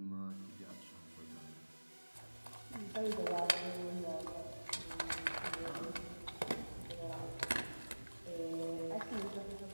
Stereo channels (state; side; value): inverted; both; correlation -1.00